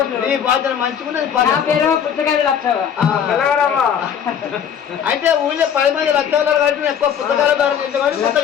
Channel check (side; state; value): right; quieter; 8.3 dB